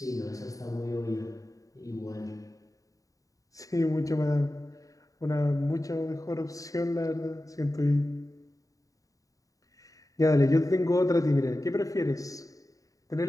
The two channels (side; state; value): right; late; 0.16 ms